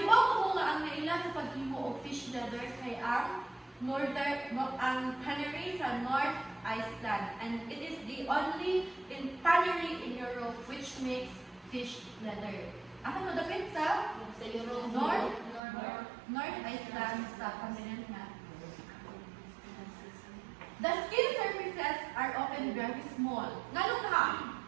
ibaw ko nga ang naila sa paghimo og fish leather kay ang tannery sa North Iceland, and it is the only tannery in Europe which makes fish leather. Asa mo dapit sa Europe? North Iceland sa continent na. The skin surfaces are often very small. Nganong ka,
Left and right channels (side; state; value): left; drops out; at 15.6 s